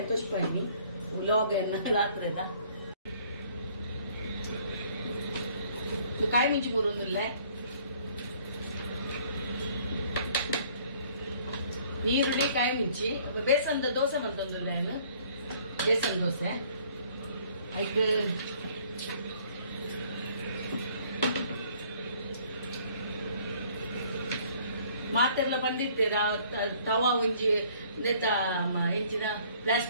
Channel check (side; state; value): both; inverted; correlation -0.59